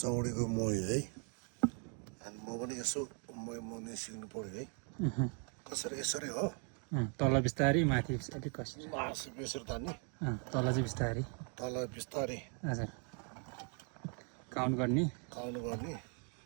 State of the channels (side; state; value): left; quieter; 39.8 dB